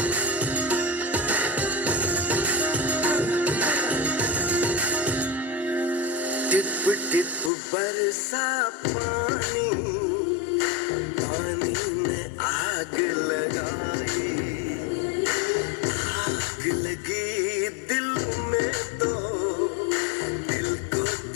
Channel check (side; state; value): right; drops out; at 7.5 s